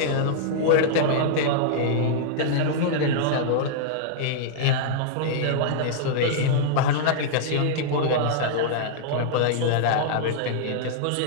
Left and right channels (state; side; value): different; both; correlation -0.02